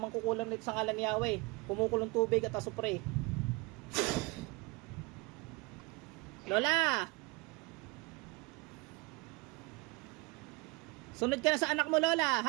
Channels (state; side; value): quieter; left; 25.9 dB